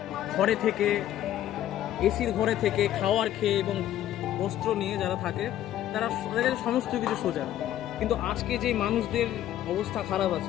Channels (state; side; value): quieter; right; 12.3 dB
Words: ঘরে থেকে, এসির ঘরে থেকে, খাওয়ার খেয়ে এবং বস্ত্র নিয়ে যারা থাকে তাদের কাছে সমস্ত কিছু সোজা, কিন্তু আজকে যে মানুষদের অবস্থা খারাপ